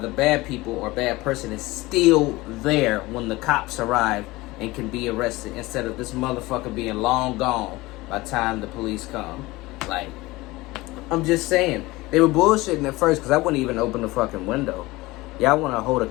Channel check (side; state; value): right; quieter; 20.4 dB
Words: bad people or bad person is still there when the cops arrive and can be arrested, instead of this motherfucker being long gone by the time the police come. Like, I'm just saying, they were bullshitting at first because I wouldn't even open the fucking window. Y'all want to hold a